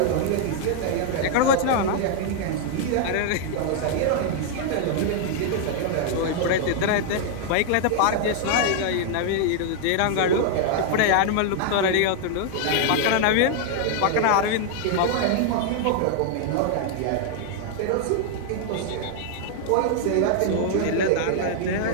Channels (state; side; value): different; both; correlation 0.00